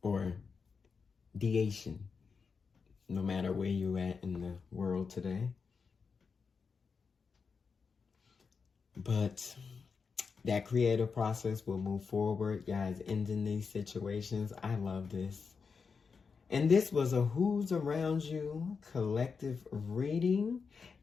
Or deation, no matter where you're at in the world today. But that creative process will move forward, guys, ending these situations. I love this. And this was a Who's Around You collective reading.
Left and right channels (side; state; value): right; quieter; 5.4 dB